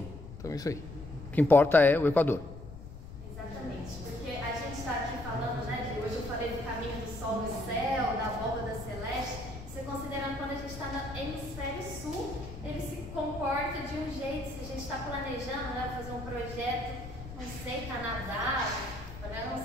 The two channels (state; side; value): noise; left; rumble, 12 dB below the sound